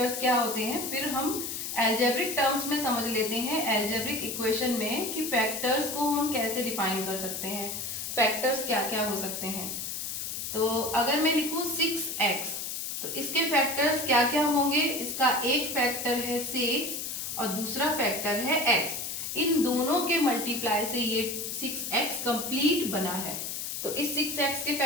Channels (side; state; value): left; noise; hiss, 4 dB below the sound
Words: क्या होते हैं। फिर हम एल्जेब्रिक टर्म्स में समझ लेते हैं, एल्जेब्रिक इक्वेशन में, कि फैक्टर्स को हम कैसे डिफाइन कर सकते हैं, फैक्टर्स क्या क्या हो सकते हैं। तो अगर मैं लिखूं 6x, तो इसके फैक्टर्स क्या क्या होंगे? इसका एक फैक्टर है 6 और दूसरा फैक्टर है x। इन दोनों के मल्टीप्लाई से ये 6x कंप्लीट बना है। तो इस 6x के